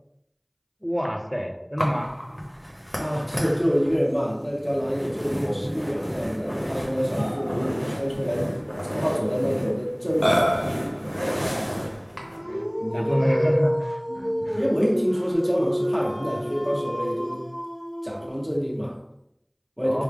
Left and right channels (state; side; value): identical; both; correlation 1.00